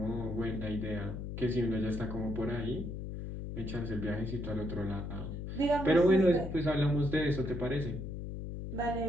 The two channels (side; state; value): left; noise; hum, 6 dB below the sound